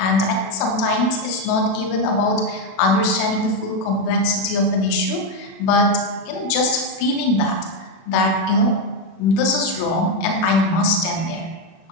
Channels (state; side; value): late; right; 36 ms